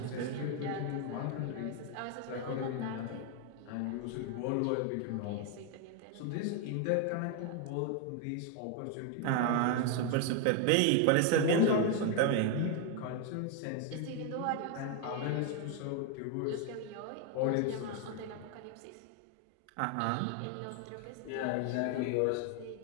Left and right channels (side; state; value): both; different; correlation 0.01